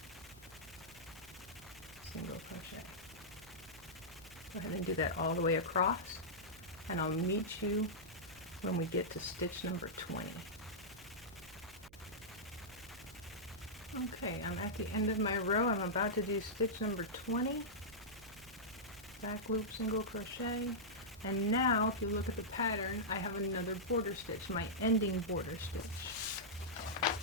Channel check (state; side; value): noise; right; hum, 23 dB below the sound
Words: single crochet. Go ahead and do that all the way across, and I'll meet you when we get to stitch number 20. Okay, I'm at the end of my row. I'm about to do stitch number 20. Back loop, single crochet. And now, if you look at the pattern, I have another border stitch, my ending border stitch.